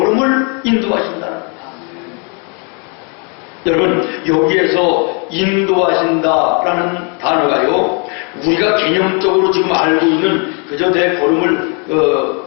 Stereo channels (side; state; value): right; quieter; 36.3 dB